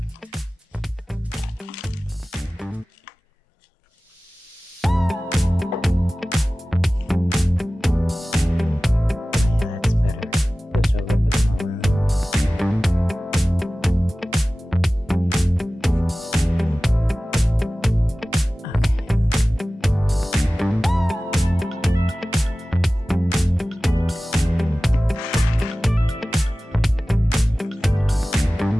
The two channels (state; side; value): normal; both; correlation 0.97